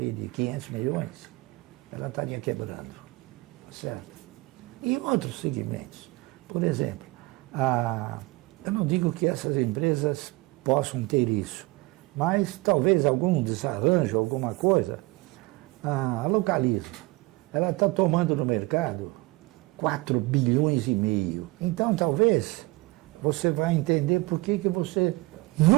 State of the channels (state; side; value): quieter; left; 22.2 dB